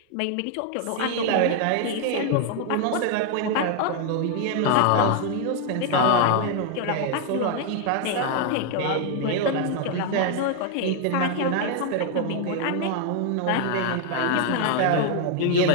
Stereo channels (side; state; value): both; different; correlation 0.00